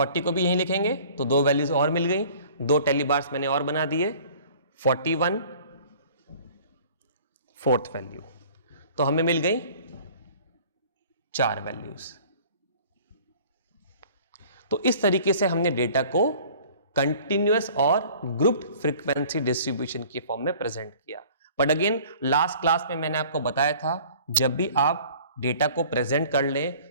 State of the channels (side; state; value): both; inverted; correlation -0.49